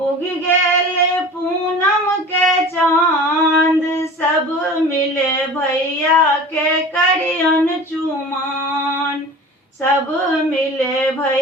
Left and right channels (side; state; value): both; normal; correlation 0.38